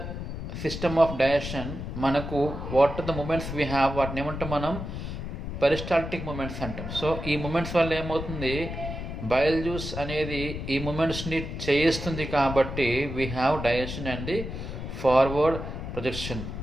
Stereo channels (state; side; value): noise; left; rumble, 6 dB below the sound